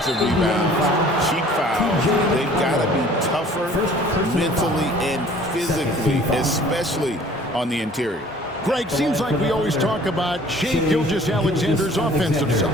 rebounds, cheap fouls, they've got to be tougher mentally and physically, especially on the interior. Greg, seems like we always talk about Shai Gilgeous-Alexander's offensive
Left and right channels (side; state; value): both; normal; correlation 0.52